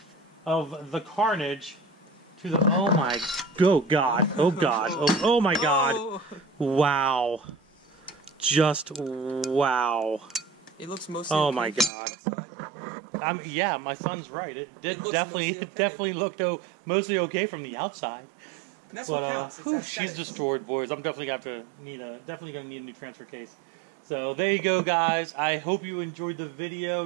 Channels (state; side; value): drops out; left; at 11.9 s